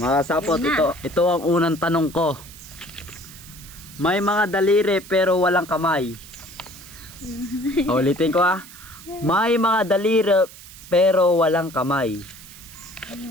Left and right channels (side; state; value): right; noise; hiss, 18 dB below the sound